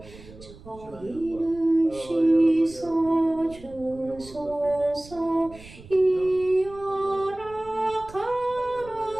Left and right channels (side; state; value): right; noise; rumble, 19 dB below the sound